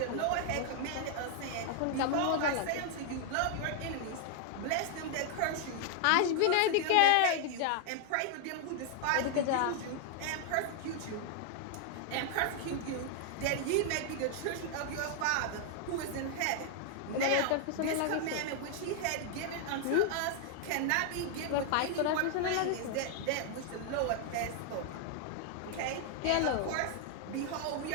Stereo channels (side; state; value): both; different; correlation 0.00